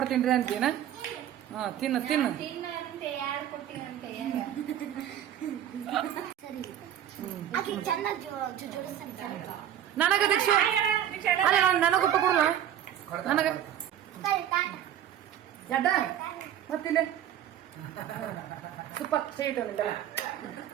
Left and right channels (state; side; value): quieter; left; 10.7 dB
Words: ಅಂತೀನ. ಹಾ ತಿನ್ನು ತಿನ್ನು. ತಿನ್ನಂತೆ ಯಾರು ಕೊಡ್ತೀನಂತೆ ಆಕೆ ಚೆನ್ನಾಗಿ ಜೋಡಿಸ್ತಾನೆ. ನನಗ ದೀಕ್ಷೆ ನನಗ ಊಟ ಕೊಡುವ ನನಗ ಎಡ್ಡ ಮತ್ತಿಲ್ಲ ಸೂಪರ್ ಸ್ವೀಟ್